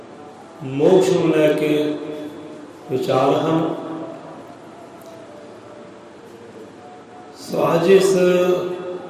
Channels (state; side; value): identical; both; correlation 1.00